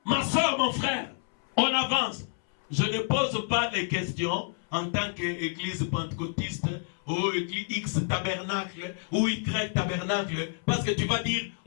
ma soeur, mon frère, on avance. Je ne pose pas les questions en tant qu'église pentecôtiste ou église X tabernacle ou Y tabernacle, parce que tu vas dire,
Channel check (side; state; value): right; silent; 59 dB below the other